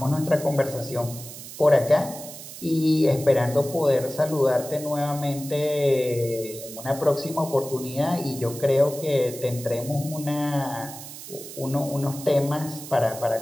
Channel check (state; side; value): noise; right; hiss, 13 dB below the sound